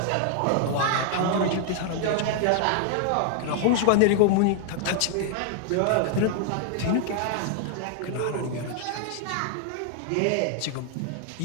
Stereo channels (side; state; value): both; different; correlation 0.00